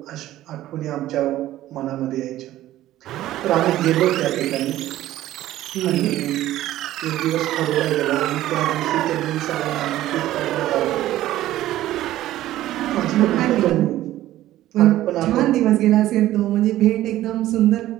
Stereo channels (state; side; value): quieter; left; 14.4 dB